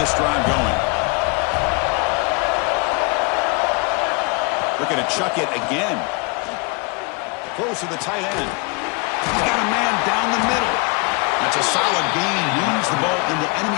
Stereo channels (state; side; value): quieter; right; 30.3 dB